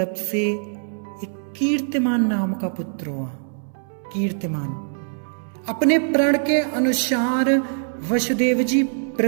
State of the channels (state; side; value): silent; left; digital silence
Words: से एक कीर्तिमान नाम का पुत्र हुआ। कीर्तिमान अपने प्रण के अनुसार वसुदेव जी